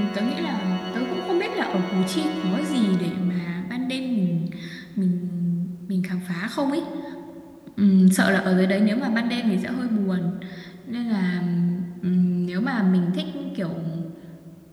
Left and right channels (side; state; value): both; identical; correlation 1.00